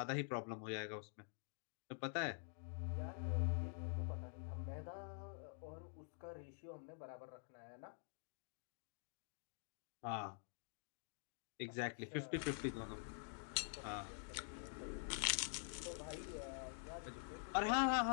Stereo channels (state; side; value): silent; right; digital silence